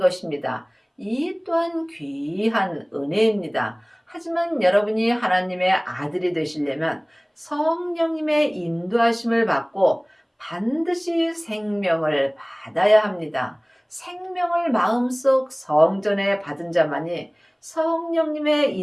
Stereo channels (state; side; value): identical; both; correlation 1.00